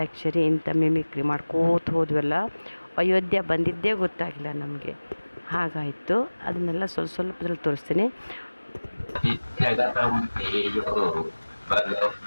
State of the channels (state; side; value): inverted; both; correlation -1.00